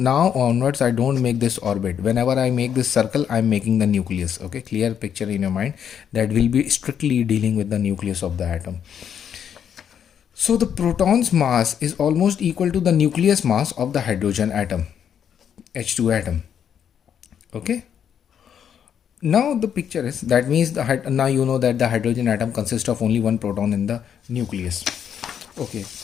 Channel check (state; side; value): quieter; right; 8.5 dB